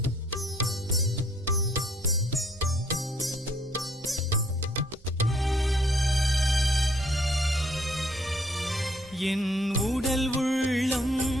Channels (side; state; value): both; normal; correlation 0.65